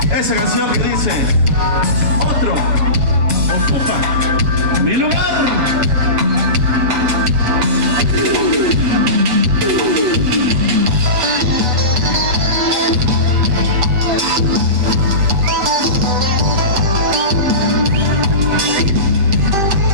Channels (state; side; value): late; left; 7.8 ms